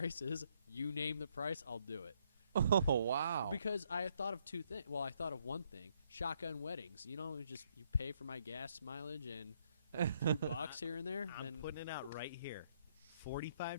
is, you name the price, I'll do it. Oh, wow. Because I thought of two things. Well, I thought of one thing. Shotgun weddings. You know, you pay for my gas mileage and $2 here and there. I'm Then putting it out right here. $45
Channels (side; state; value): both; inverted; correlation -0.72